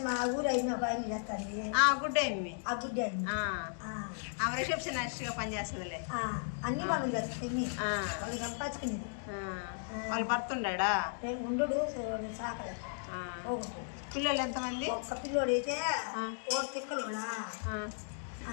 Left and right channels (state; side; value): silent; right; digital silence